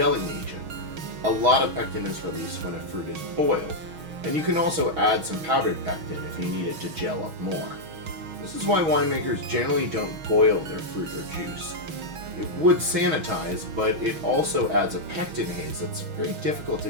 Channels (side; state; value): left; late; 6.3 ms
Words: agent. A lot of pectin is released when a fruit is boiled, and you can also add some powdered pectin if you need it to gel up more. This is why winemakers generally don't boil their fruit or juice. It would sanitize, but it also adds a pectin haze that's very difficult to